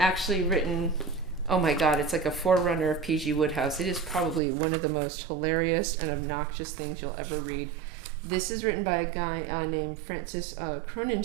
written, oh my God, it's like a forerunner of P.G. Wodehouse. It is probably one of the most hilarious and obnoxious things you'll ever read. This is written by a guy named Francis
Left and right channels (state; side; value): drops out; left; at 4.4 s